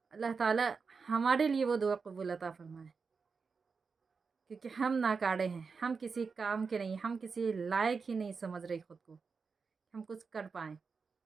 اللہ تعالیٰ ہمارے لیے وہ دعا قبول عطا فرمائے، کیونکہ ہم ناکارے ہیں، ہم کسی کام کے نہیں، ہم کسی لائق ہی نہیں سمجھ رہے خود کو ہم کچھ کر پائیں۔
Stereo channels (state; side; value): quieter; left; 5.1 dB